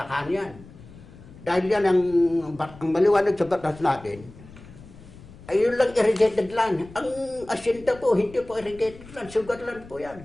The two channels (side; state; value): left; noise; rumble, 20 dB below the sound